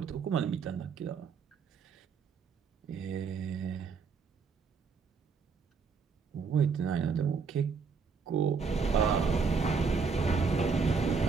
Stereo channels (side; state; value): left; quieter; 5.3 dB